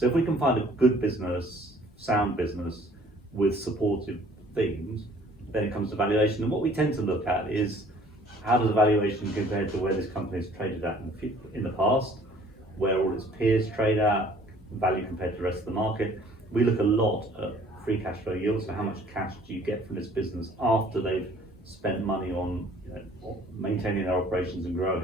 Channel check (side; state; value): both; normal; correlation 0.55